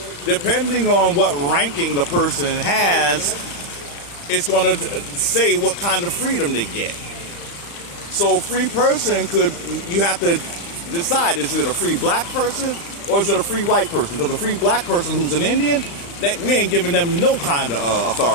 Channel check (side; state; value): right; late; 35 ms